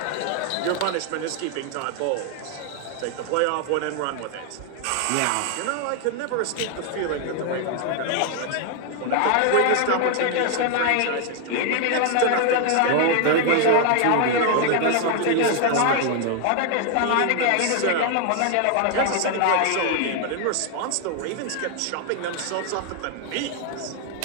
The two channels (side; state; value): both; different; correlation 0.00